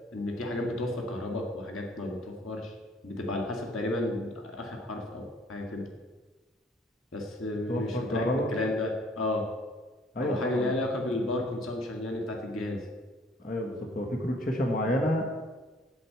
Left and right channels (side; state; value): both; normal; correlation 0.58